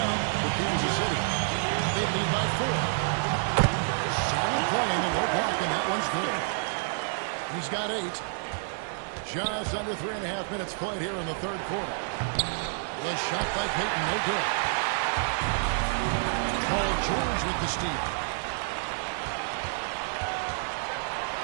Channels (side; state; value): left; silent; digital silence